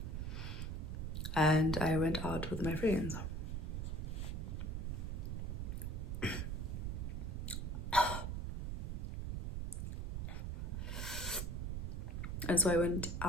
and I went out with my friends. And so I went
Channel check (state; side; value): noise; right; rumble, 3 dB below the sound